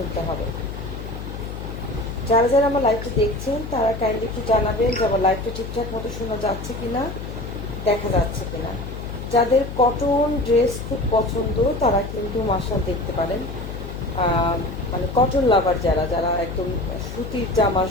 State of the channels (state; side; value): noise; left; hum, 8 dB below the sound